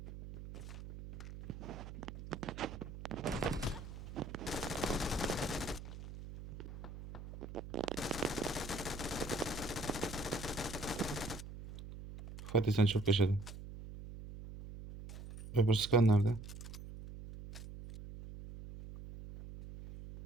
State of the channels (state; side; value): noise; right; hum, 11 dB below the sound